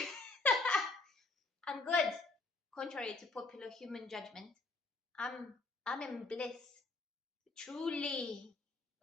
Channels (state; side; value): quieter; right; 3.4 dB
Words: I'm good. Contrary to popular human judgment, I'm in bliss. Truly.